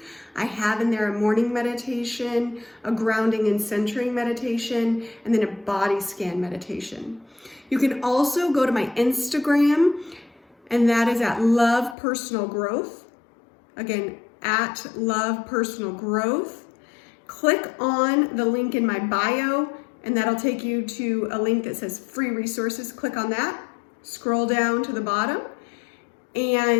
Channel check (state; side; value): drops out; right; at 12.0 s